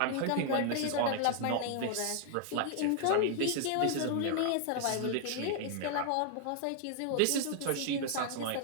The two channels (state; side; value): different; both; correlation 0.00